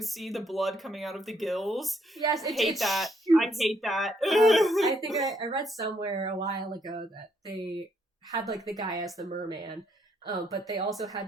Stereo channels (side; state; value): both; normal; correlation 0.72